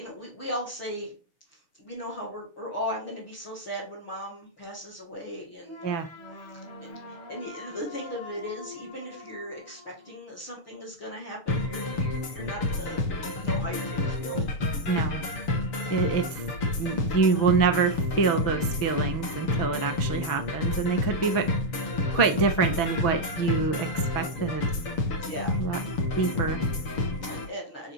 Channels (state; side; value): late; right; 6.8 ms